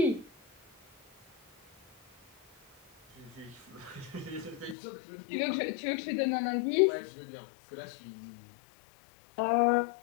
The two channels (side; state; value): right; drops out; at 4.8 s